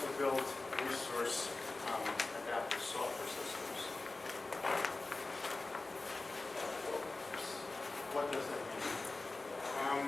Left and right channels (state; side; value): quieter; right; 3.3 dB